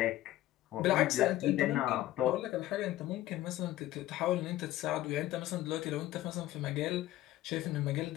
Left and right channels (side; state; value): right; quieter; 15.1 dB